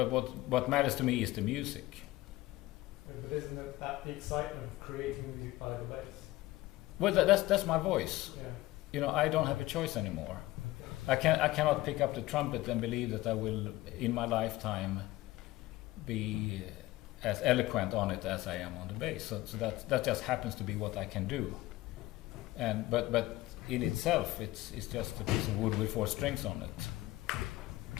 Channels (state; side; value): quieter; right; 18.0 dB